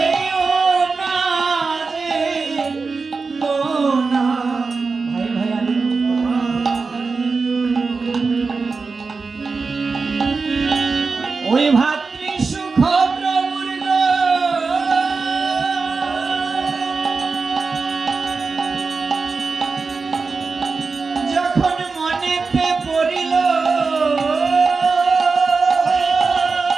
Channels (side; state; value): left; quieter; 4.4 dB